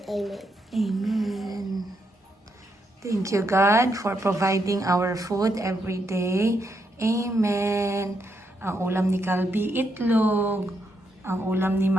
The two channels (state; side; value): normal; both; correlation 0.79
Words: Amen. Thank you, God, for providing our food every day. Amen. Ang ulam ni Calby, itlog. Ang ulam ni